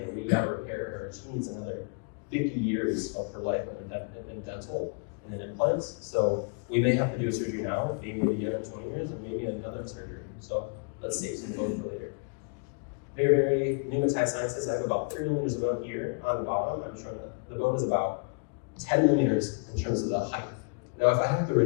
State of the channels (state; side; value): quieter; right; 38.5 dB